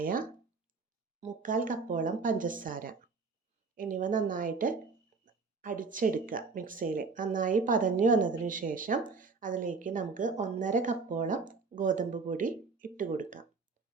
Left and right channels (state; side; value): quieter; left; 4.5 dB